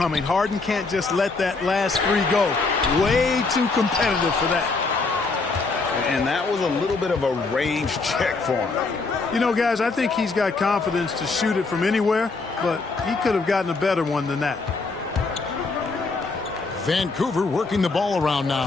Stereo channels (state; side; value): quieter; right; 3.9 dB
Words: Harden can't just let that last three go. Way too competitive for that. And that was a little bit of a range check for him. You know, guys, I think he's got confidence to shoot it from anywhere, but he could have gotten a better one than that. Vancouver working the ball around